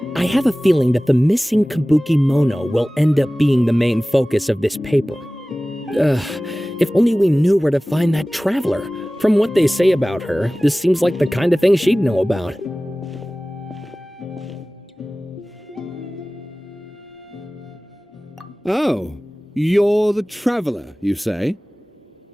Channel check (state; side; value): normal; both; correlation 0.98